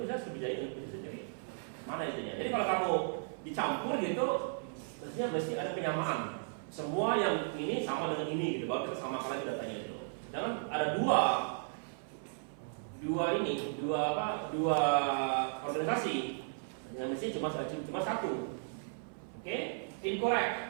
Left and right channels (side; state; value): left; silent; 54 dB below the other